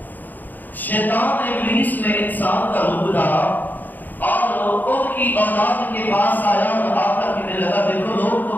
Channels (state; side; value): late; right; 0.085 ms